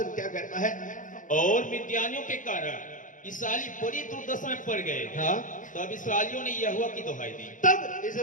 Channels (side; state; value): right; late; 0.38 ms